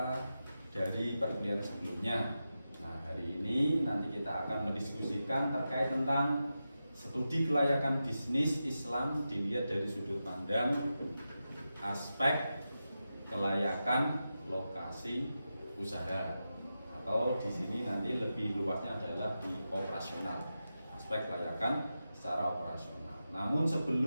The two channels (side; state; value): both; inverted; correlation -0.91